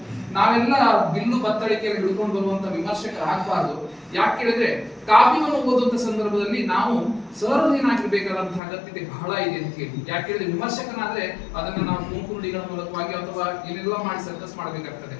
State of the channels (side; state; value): right; drops out; at 8.6 s